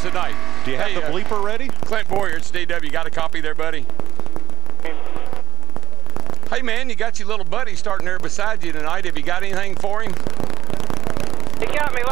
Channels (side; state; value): left; quieter; 11.5 dB